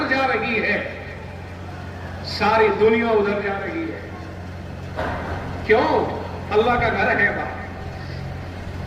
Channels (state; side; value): identical; both; correlation 1.00